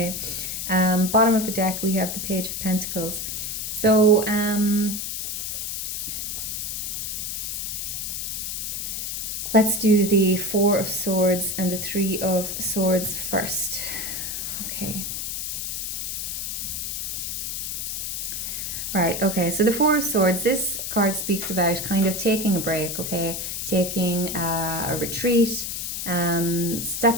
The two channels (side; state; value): left; noise; hiss, 3 dB below the sound